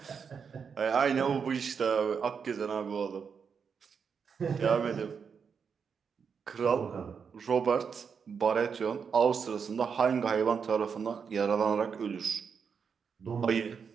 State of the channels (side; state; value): left; quieter; 6.3 dB